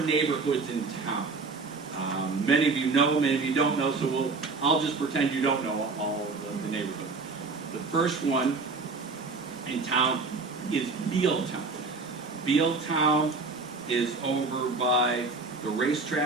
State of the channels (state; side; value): quieter; left; 4.0 dB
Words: in town. Many of you know, many of you don't know, so I'll just pretend you don't know all of the neighborhoods. The first one in town is Bealtown. Bealtown is over by the